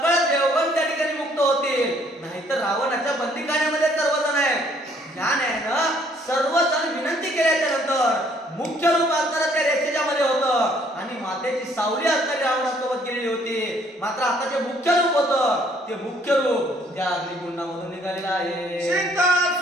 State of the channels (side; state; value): both; normal; correlation 0.63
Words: देवगण त्या ठिकाणी मुक्त होतील नाहीतर रावणाच्या बंदिखान्यामध्ये सर्वजण आहेत ज्ञानेनं सर्वजण विनंती केल्याच्या नंतर मुख्य रूप असणारं त्या रेषेच्या मध्ये होतं आणि मातेची सावली असणारी रावणासोबत गेलेली होती मात्र आता जे मुख्य रूप होतं ते मुख्य रूप त्या अग्निकुंडामधून निघालेलं आहे सीता